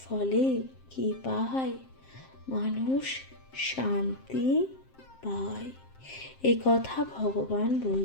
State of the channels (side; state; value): right; late; 7.6 ms